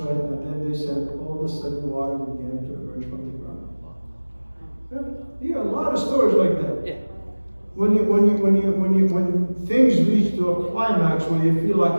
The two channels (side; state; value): both; inverted; correlation -1.00